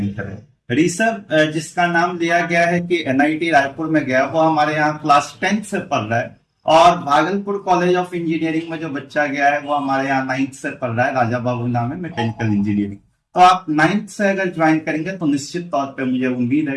करें। ऋषभ जिसका नाम लिया गया है कि एनआईटी रायपुर में गया, वो हमारे यहाँ क्लास 10th से पढ़ रहा है। और भागलपुर कॉलेज ऑफ इंजीनियरिंग में जो बच्चा गया है वो हमारे यहाँ 9th से पढ़ रहा है, राजा बाबू नाम है, मैकेनिकल इंजीनियरिंग। तो आप 9th से अगर ज्वाइन करेंगे तो निश्चित तौर पर मुझे उम्मीद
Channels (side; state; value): both; identical; correlation 1.00